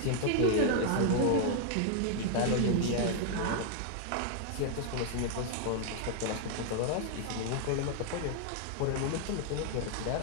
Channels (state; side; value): different; both; correlation 0.00